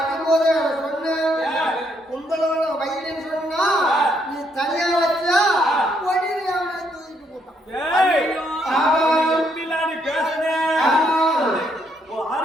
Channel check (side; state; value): both; normal; correlation 0.73